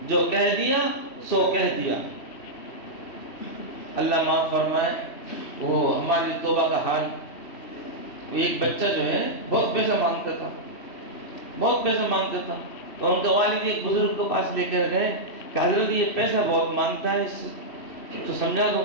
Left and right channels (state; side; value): late; right; 3.1 ms